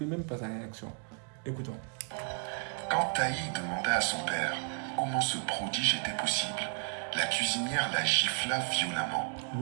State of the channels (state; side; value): quieter; left; 39.6 dB